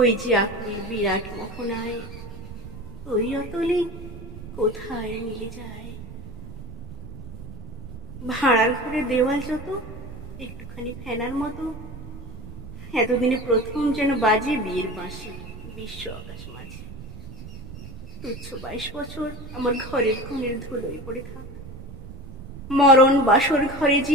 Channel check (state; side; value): noise; right; rumble, 14 dB below the sound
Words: যে আকুল বিরাট মোহনায়, ওই অতলে কোথায় মিলে যায়। ভাড়ার ঘরে দেওয়াল যত একটুখানি ফেনার মতো, এতদিনে প্রথম যেন বাজে বিয়ের বাঁশি বিশ্ব আকাশ মাঝে। তুচ্ছ 22 বছর আমার ঘরের কোণের ধুলোয় পড়ে থাক। মরণ বাসর ঘরে যে